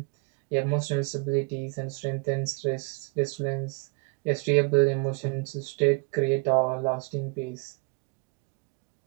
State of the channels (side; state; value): left; quieter; 30.4 dB